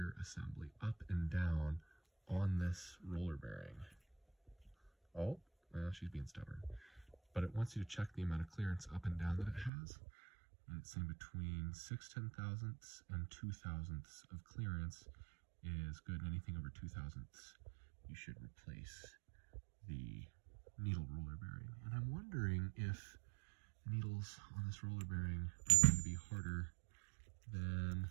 assembly up and down on this roller bearing. Oh, well, she's being stubborn. But it wants you to check the amount of clearance up and down that it has. And it's saying between 6 10,000ths and 2 thousandths of clearance is good. And anything over 2 thousandths, you should replace the needle roller bearing. And I'm wondering if needles on this roller bearing are going to be harder than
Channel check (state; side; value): drops out; left; at 9.7 s